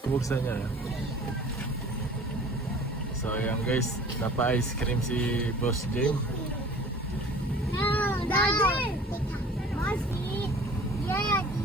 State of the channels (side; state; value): both; normal; correlation 0.46